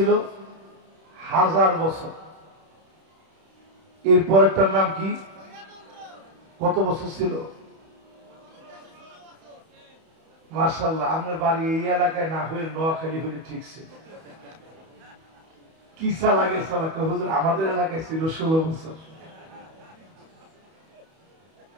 1000 বছর। এরপরেরটার নাম কি? কত বছর ছিল? মাশাআল্লাহ, আপনার বাড়ি এই এলাকায় না হয়ে নোয়াখালী হলে ঠিক ছিল। কি লাগে সালাকে হুজুর, আমাদের এলাকায় ছিল 16 বছর।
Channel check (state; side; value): late; left; 31 ms